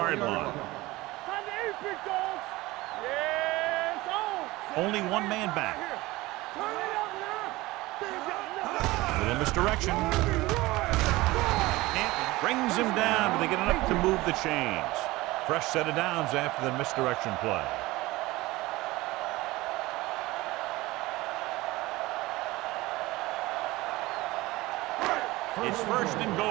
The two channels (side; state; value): left; quieter; 19.8 dB